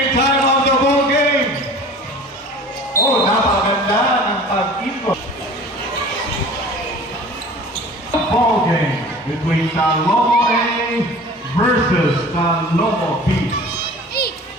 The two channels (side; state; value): both; normal; correlation 0.42